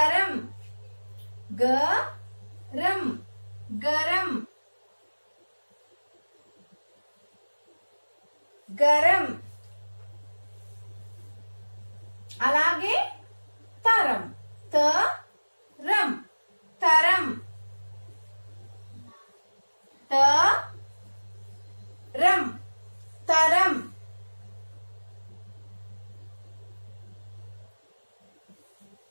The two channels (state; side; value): inverted; both; correlation -1.00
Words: గరం, గరం, గరం. అలాగే తరం, తరం, తరం, తరం, తరం.